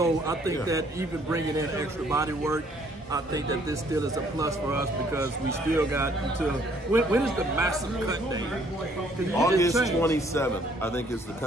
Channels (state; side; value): normal; both; correlation 0.63